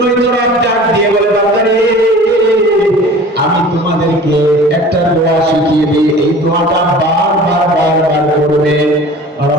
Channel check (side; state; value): both; normal; correlation 0.43